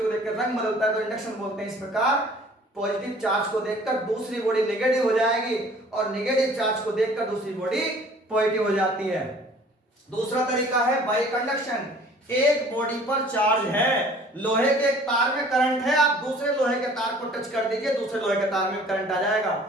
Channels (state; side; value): normal; both; correlation 0.51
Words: को देख कर रंग बदलता है तो इंडक्शन बोलते हैं। इस प्रकार पॉजिटिव चार्ज को देखकर दूसरी बॉडी नेगेटिव हो जाएगी और नेगेटिव चार्ज को देखकर दूसरी बॉडी पॉजिटिव हो जाती है। दूसरा तरीका है बाई कंडक्शन। एक बॉडी पर चार्ज है, लोहे के एक तार में करंट है, आप दूसरे लोहे के तार को टच कर दीजिए, दूसरे लोहे के तार में करंट आ जाएगा।